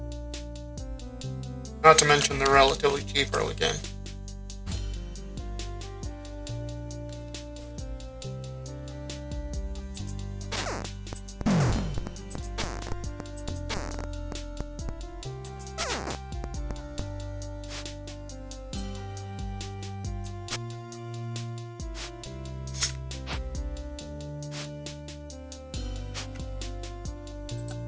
Not to mention they're relatively cheap early game.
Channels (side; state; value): both; identical; correlation 1.00